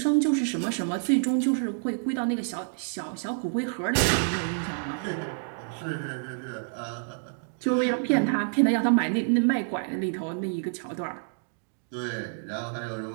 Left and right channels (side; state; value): left; silent; digital silence